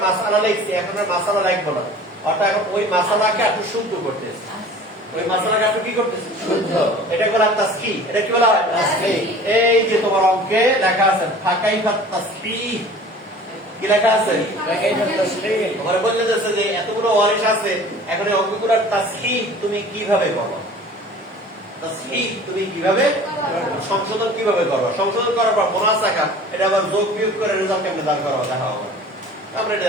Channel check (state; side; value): normal; both; correlation 0.44